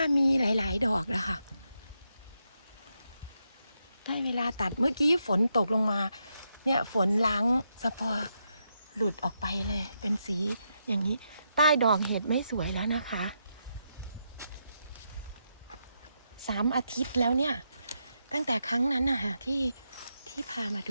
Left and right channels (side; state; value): both; inverted; correlation -0.82